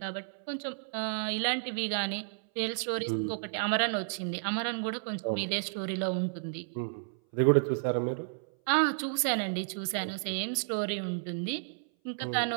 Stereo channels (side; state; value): left; silent; 57 dB below the other